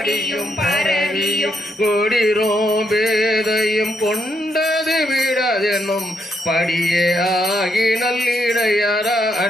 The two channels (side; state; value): both; normal; correlation 0.78